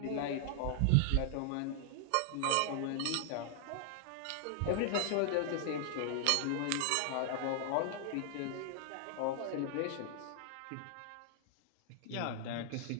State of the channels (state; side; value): different; both; correlation 0.00